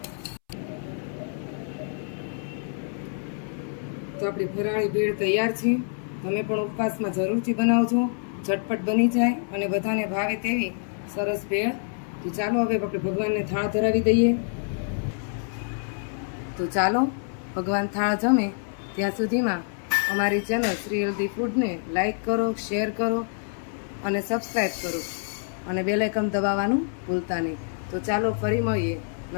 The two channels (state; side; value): silent; right; 60 dB below the other